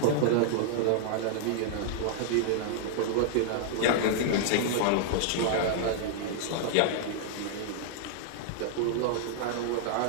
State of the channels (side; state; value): both; different; correlation -0.01